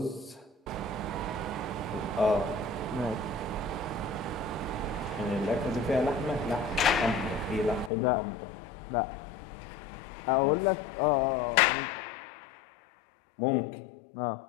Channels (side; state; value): right; drops out; at 7.9 s